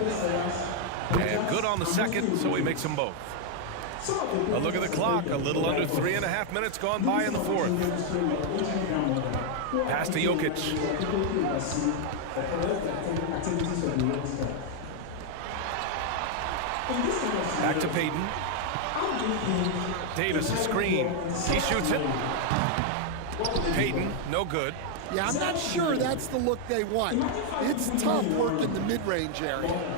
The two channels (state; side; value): different; both; correlation 0.00